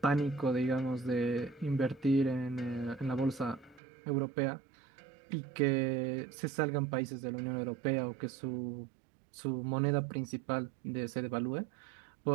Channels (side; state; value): left; drops out; at 3.8 s